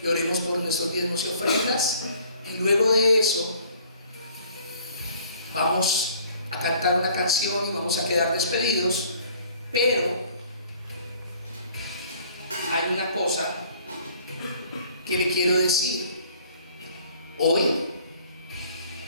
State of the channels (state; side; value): inverted; both; correlation -0.56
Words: y oremos por nuestros diezmos y ofrendas. Y luego de eso vamos a cantar una canción y vamos a quedar despedidos. Pero hay una cosa que le quiero decir. Hoy